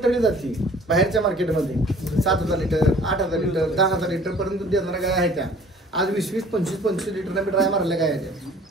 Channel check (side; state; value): both; normal; correlation 0.51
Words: ठरली जाते बाहेरच्या मार्केटमध्ये 7,000 लिटर 8,000 लिटर 10,000 लिटर पर्यंत दूध देणाऱ्या गाय आहेत त्या आज 20-20 25-25 लिटर मी ड्राय मारल्या गाय आहेत